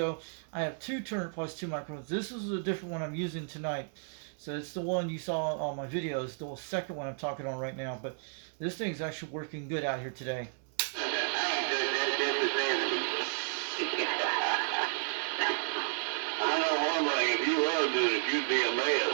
I have 2 Turner Plus 2 microphones. This is a different one I'm using tonight. So it's the one you saw on my videos, the second one I'm talking on right now. But this thing's actually working good out here today. I know one thing, if you were doing it, you'd be a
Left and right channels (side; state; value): left; silent; digital silence